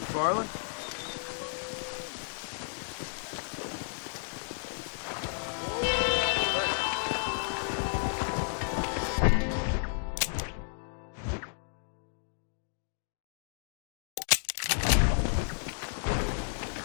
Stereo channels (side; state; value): right; silent; digital silence